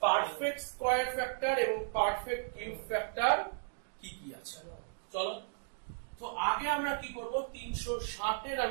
পারফেক্ট স্কয়ার ফ্যাক্টর এবং পারফেক্ট কিউব ফ্যাক্টর কি কি আছে। চলো, তো আগে আমরা কি করব? 360 এর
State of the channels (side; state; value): left; silent; digital silence